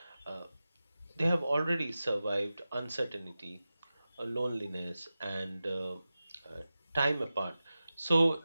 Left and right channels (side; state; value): both; inverted; correlation -0.95